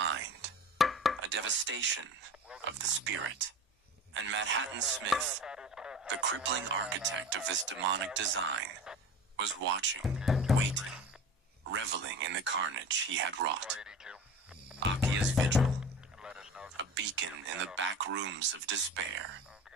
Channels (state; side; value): normal; both; correlation 0.34